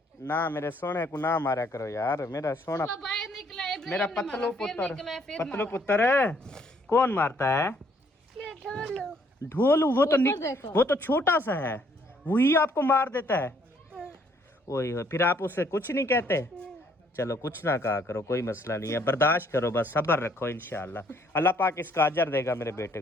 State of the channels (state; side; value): normal; both; correlation 0.66